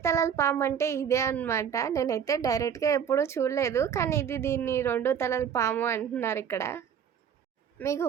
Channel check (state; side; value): quieter; left; 8.0 dB